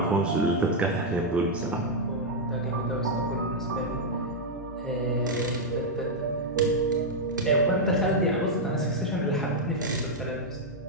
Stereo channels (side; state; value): both; normal; correlation -0.02